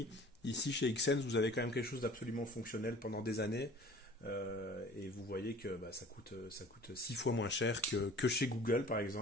Ici chez Xsense, vous avez quand même quelque chose d'absolument fonctionnel pendant des années. Et vous voyez que ça coûte 6 fois moins cher que chez Google par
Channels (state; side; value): normal; both; correlation 0.46